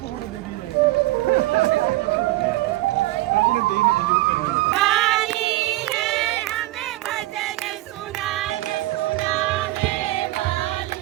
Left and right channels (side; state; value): left; quieter; 17.7 dB